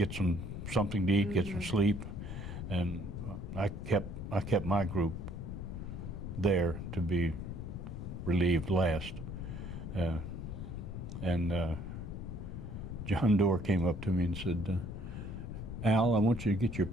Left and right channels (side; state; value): left; noise; rumble, 7 dB below the sound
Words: something to eat, get some sleep, and I kept my group there to be relieved last. And John Doerr came up to me and said, Al, I want you to get your